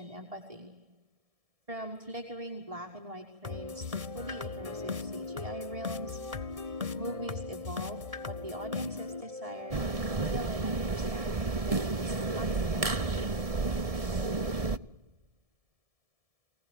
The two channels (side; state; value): left; late; 1.7 ms